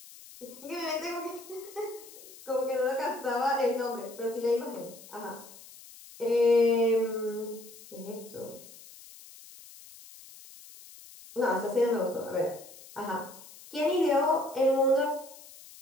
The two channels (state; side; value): noise; left; hiss, 19 dB below the sound